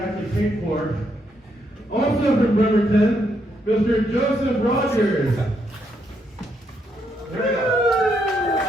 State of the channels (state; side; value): normal; both; correlation 0.77